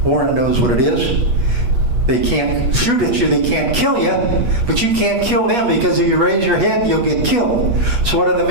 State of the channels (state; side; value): late; left; 8.3 ms